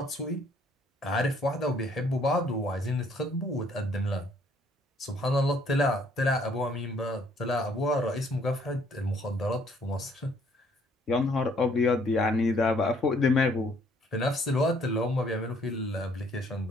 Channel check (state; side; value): normal; both; correlation 0.63